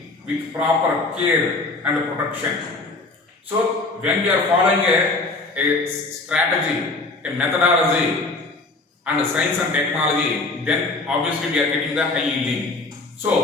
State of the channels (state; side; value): quieter; right; 3.3 dB